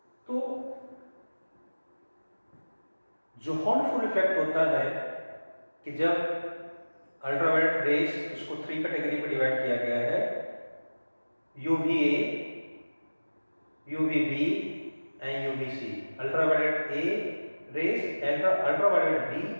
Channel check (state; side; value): inverted; both; correlation -1.00